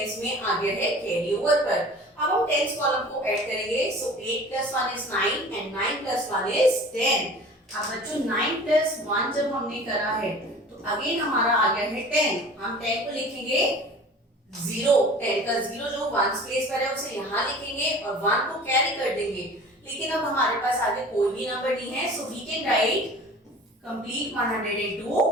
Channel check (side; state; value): both; normal; correlation 0.43